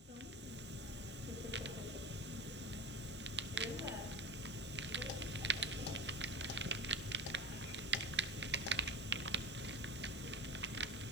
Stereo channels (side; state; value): both; normal; correlation 0.28